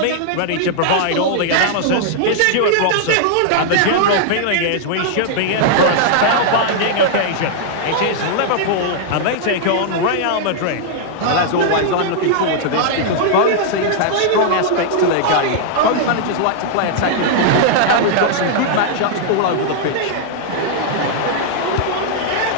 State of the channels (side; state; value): both; different; correlation -0.01